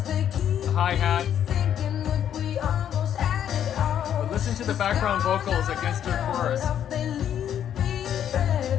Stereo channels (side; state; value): right; quieter; 9.8 dB